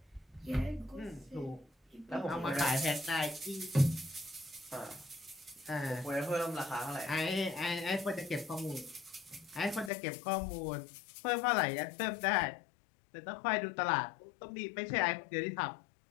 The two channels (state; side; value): drops out; right; at 9.9 s